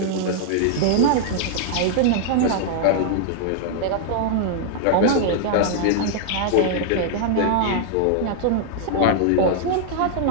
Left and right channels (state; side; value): different; both; correlation -0.01